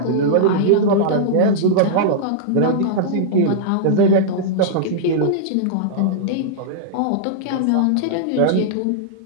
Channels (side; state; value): both; different; correlation -0.02